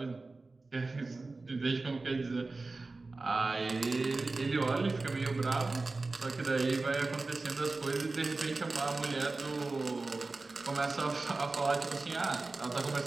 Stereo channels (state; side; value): quieter; left; 3.5 dB